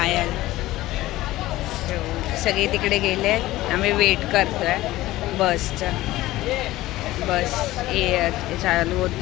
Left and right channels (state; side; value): quieter; right; 16.9 dB